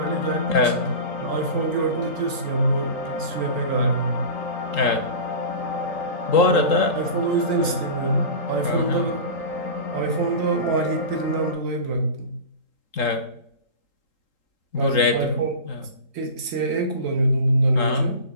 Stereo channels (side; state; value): right; late; 3.8 ms